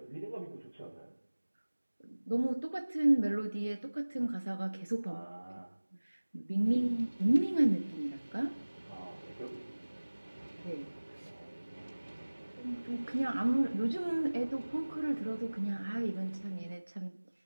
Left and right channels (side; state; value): both; inverted; correlation -1.00